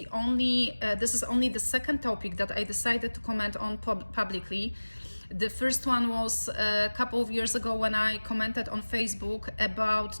only the second topic that I decided to comment on publicly. The first one was a couple of years ago when I commented on Facebook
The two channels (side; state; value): both; inverted; correlation -1.00